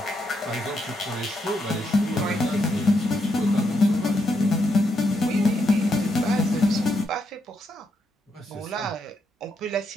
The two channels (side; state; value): both; normal; correlation 0.79